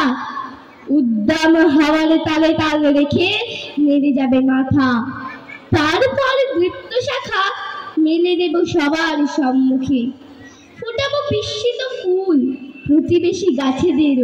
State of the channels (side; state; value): both; identical; correlation 1.00